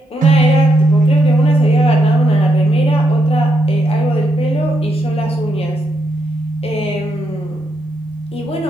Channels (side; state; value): both; normal; correlation 0.79